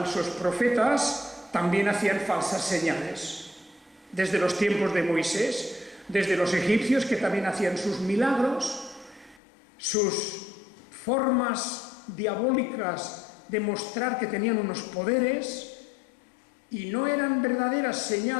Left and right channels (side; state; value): right; drops out; at 9.4 s